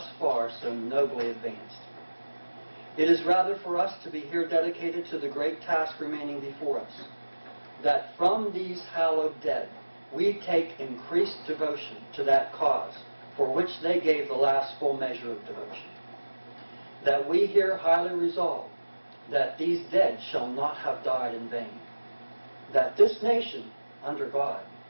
far so nobly advanced. It is rather for us to be here dedicated to the great task remaining before us, that from these hallowed dead we take increased devotion to that cause for which they gave the last full measure of devotion. That we here highly resolve that these dead shall not have died in vain. That this nation, under God,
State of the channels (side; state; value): both; inverted; correlation -1.00